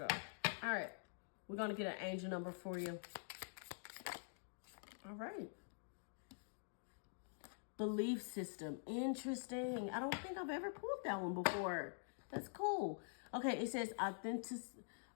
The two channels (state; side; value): silent; right; digital silence